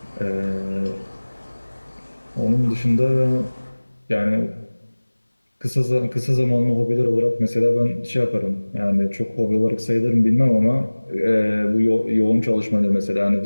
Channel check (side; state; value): both; inverted; correlation -1.00